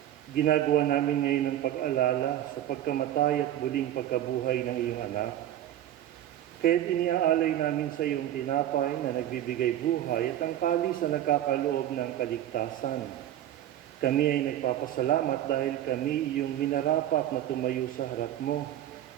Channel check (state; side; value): quieter; left; 12.1 dB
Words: ginagawa namin ngayon ang pag-alala sa pagkamatay at muling pagkabuhay ng iyong anak. Kaya't iniaalay namin sa iyong tinapay na nagbibigay buhay at ang kalis na nagkakaloob ng kaligtasan. Kami ay nagpapasalamat dahil kami iyong minarapat na tumayo sa harap mo